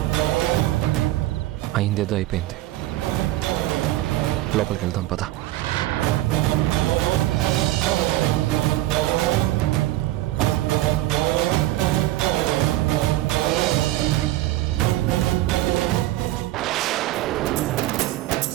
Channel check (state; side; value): quieter; left; 16.0 dB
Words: అయిందేదో అయిపోయింది. లోపలికి వెళ్దాం పద.